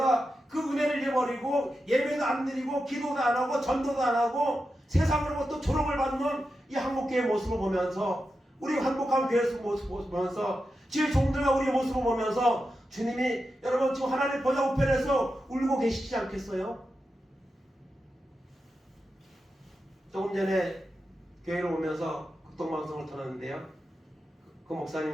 그 은혜를 잃어버리고 예배도 안 드리고 기도도 안 하고 전도도 안 하고 세상으로부터 조롱을 받는 이 한국교회의 모습을 보면서 우리 한복한 교회의 모습을 보면서 주의 종들과 우리의 모습을 보면서 주님이 여러분 지금 하나님 보좌 우편에서 울고 계시지 않겠어요? 조금 전에 교회로 오면서 극동방송을 터놨는데요. 그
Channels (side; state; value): both; normal; correlation 0.89